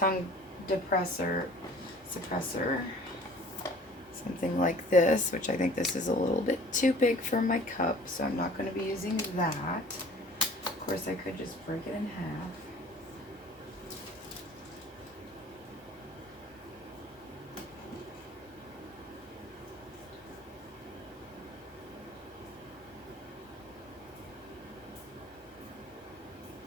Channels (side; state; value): both; normal; correlation 0.48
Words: suppressor, something like this, which I think this is a little bit too big for my cup, so I'm not going to be using that. Of course, I could just break it in half.